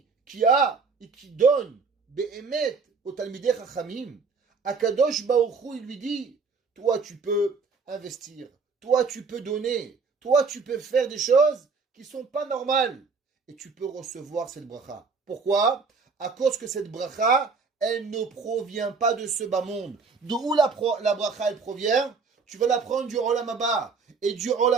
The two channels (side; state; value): left; quieter; 4.8 dB